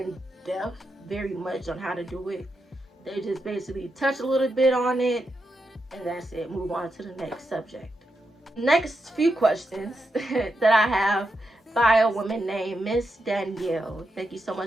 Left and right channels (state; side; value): normal; both; correlation 0.85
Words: depth very much on how to do it. They just basically touch a little bit on it, and that's it. Move on to the next subject. Next few questions that I have by a woman named Miss Danielle. Thank you so